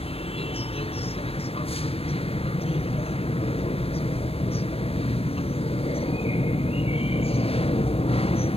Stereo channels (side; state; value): right; late; 0.28 ms